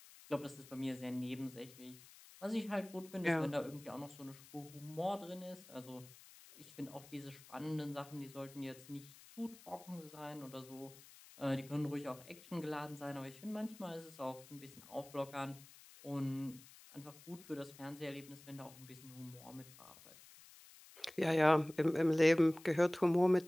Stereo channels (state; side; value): noise; left; hiss, 20 dB below the sound